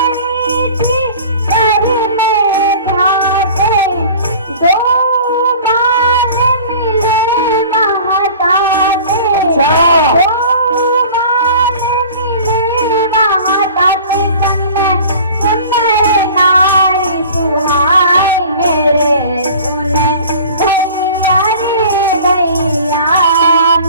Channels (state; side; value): inverted; both; correlation -0.43